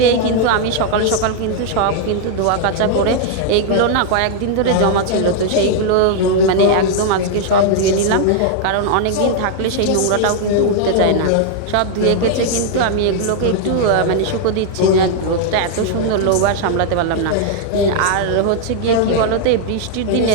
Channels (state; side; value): different; both; correlation 0.00